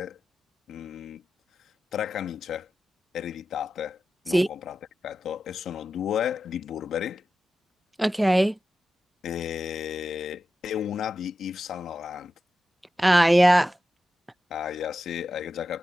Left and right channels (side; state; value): both; normal; correlation 0.92